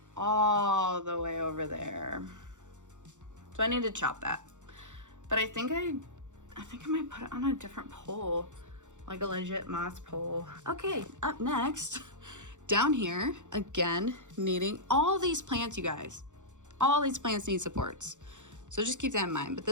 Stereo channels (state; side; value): late; left; 0.85 ms